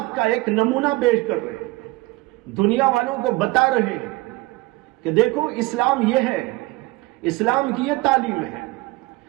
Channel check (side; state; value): left; quieter; 21.5 dB